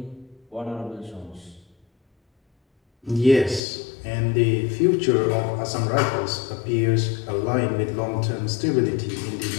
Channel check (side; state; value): right; drops out; at 3.6 s